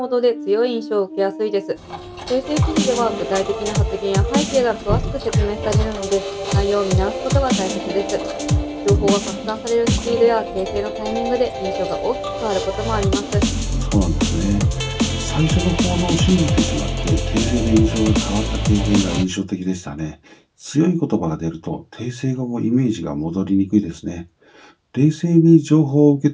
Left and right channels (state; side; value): identical; both; correlation 1.00